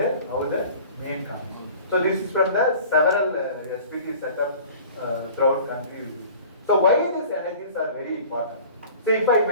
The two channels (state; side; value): inverted; both; correlation -0.45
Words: how the mean comes. So this is from the several SPT setup throughout country. So why these energies are very important? So if I